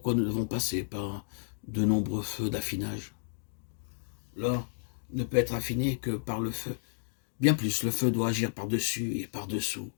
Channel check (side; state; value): right; silent; digital silence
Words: nous devons passer par de nombreux feux d'affinage. L'or ne peut être affiné que par le feu. Bien plus, le feu doit agir par-dessus et par-dessous.